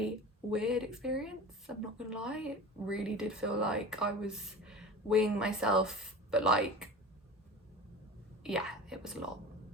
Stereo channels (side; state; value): both; normal; correlation 0.34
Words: weird experience, I'm not gonna lie. It really did feel like I was weighing myself, but like, yeah, it was a lot.